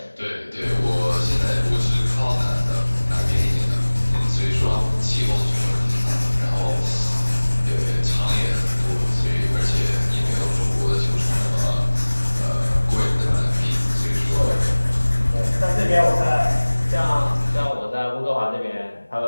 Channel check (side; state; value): both; inverted; correlation -1.00